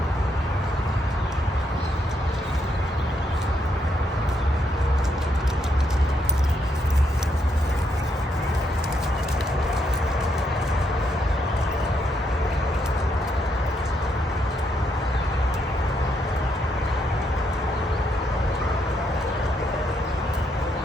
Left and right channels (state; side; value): normal; both; correlation 0.77